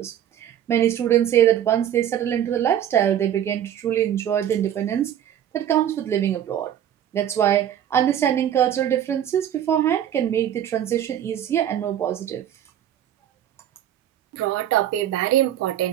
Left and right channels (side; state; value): left; quieter; 10.6 dB